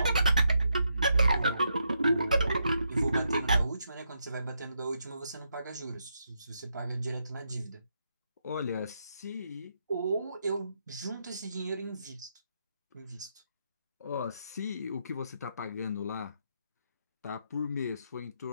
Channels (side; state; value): both; inverted; correlation -0.80